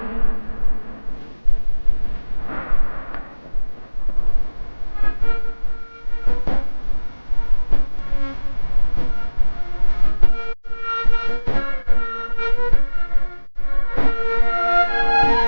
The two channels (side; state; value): both; inverted; correlation -1.00